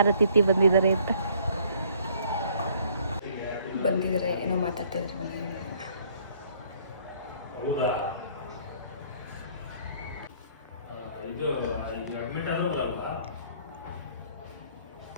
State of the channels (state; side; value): inverted; both; correlation -0.60